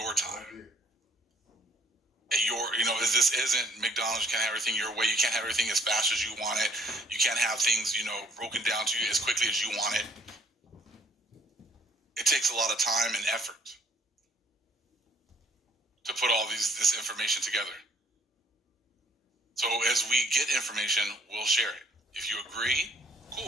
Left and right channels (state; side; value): normal; both; correlation 0.61